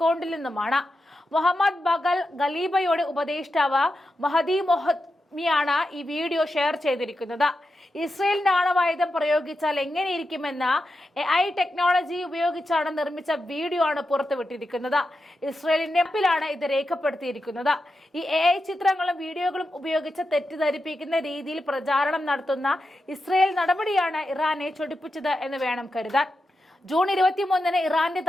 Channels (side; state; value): both; normal; correlation 0.89